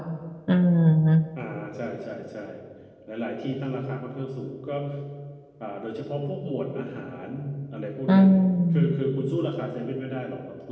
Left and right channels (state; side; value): identical; both; correlation 1.00